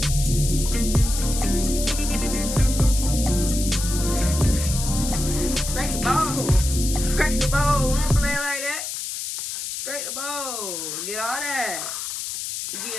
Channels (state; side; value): noise; left; hiss, 5 dB below the sound